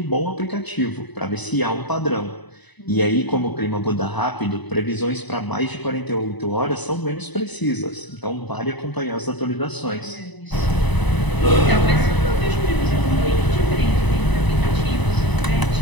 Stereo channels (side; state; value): right; late; 1.0 ms